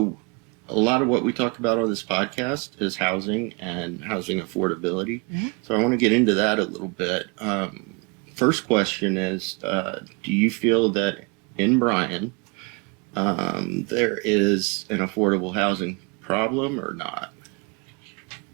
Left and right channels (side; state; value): left; quieter; 30.6 dB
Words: a lot of what we talk about on this podcast is housing and housing affordability. So I want to get into that a little bit. First question is, do you feel that in Bryan, there is an affordable housing problem or not?